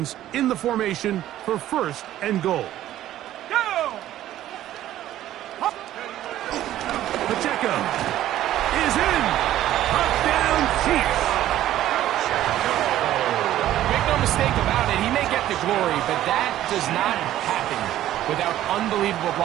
in the formation for first and goal. Go! Pacheco is in. Touchdown, Chiefs. Make no mistake about it, he may get the glory, but that does not happen without unbelievable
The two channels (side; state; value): left; quieter; 13.1 dB